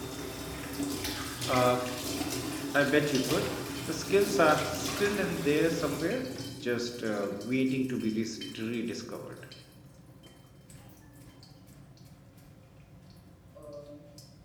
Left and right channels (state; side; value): identical; both; correlation 1.00